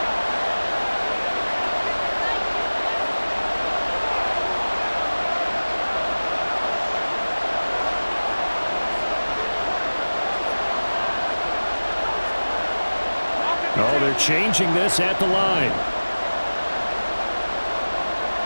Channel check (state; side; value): inverted; both; correlation -1.00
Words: Oh, they're changing this at the line.